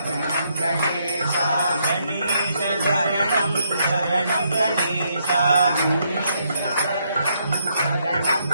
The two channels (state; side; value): inverted; both; correlation -0.75